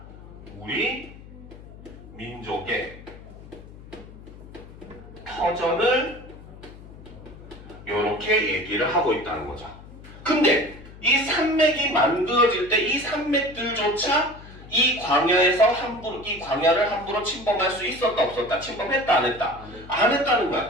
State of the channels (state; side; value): noise; left; hum, 17 dB below the sound